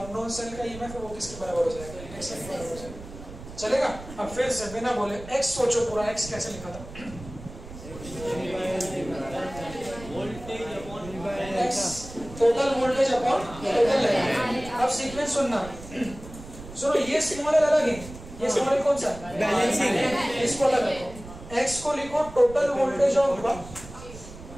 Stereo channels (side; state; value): right; noise; rumble, 14 dB below the sound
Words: सेल का ईएमएफ है वो किसके बराबर हो जाएगा, x के बराबर हो जाएगा। चलेगा। अब फिर से बिना बोले x सोचो पूरा। x कैसे लिखा था, x total voltage upon total length. अब सीक्वेंस सुनना, सुनो, ये स्मॉल एल अलग है, ये स्मॉल एल कौन सा है, बैलेंसिंग, इसको अलग रखो। x को लिखो total voltage of